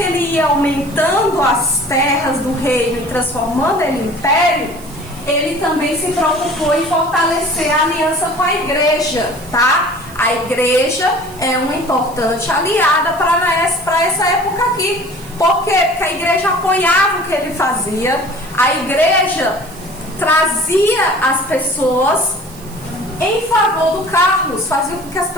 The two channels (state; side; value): noise; right; hiss, 20 dB below the sound